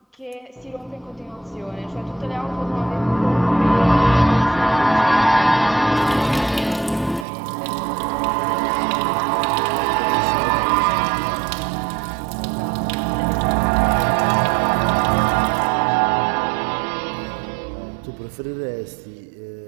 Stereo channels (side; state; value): left; drops out; at 7.2 s